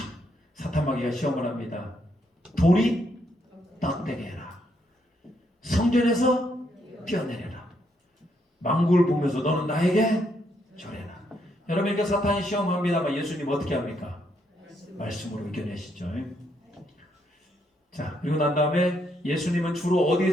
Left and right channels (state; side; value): normal; both; correlation 0.75